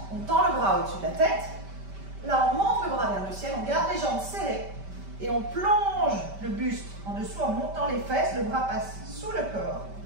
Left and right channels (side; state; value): left; late; 5.1 ms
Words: on tend le bras au-dessus de la tête. Là, on monte le bras vers le ciel, on garde les jambes serrées et on plonge le buste en dessous en montant les fesses. Le bras passe sous le corps.